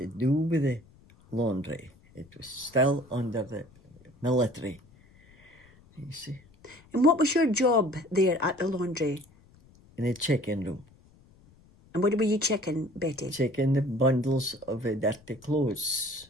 do with the laundry. It was still under the military. You see. And what was your job there at the laundry? In a check-in room. And what were you checking, Betty? Checking the bundles of dirty clothes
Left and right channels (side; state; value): left; noise; rumble, 27 dB below the sound